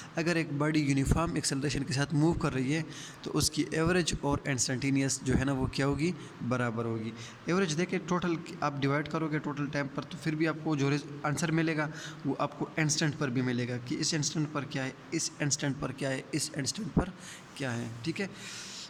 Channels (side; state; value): both; identical; correlation 1.00